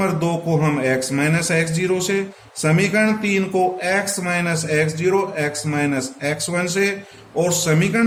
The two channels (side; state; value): both; identical; correlation 1.00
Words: 2 को हम x माइनस एक्स जीरो से, समीकरण 3 को x minus X zero x minus X one से, और